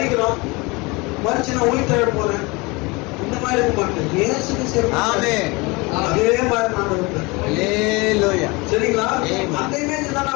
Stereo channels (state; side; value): quieter; right; 25.5 dB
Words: மறிச்சு நான் உயிர்த்தெழ போறேன் இந்த மாதிரி இருக்க மாட்டேன். இயேசு கிறிஸ்து அதே மாதிரி நான் இருப்பேன். சரிங்களா? அந்த இமேஜ் தான்